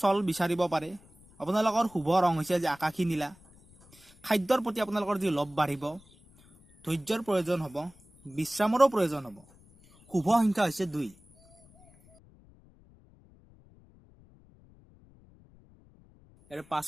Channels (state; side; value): noise; left; rumble, 27 dB below the sound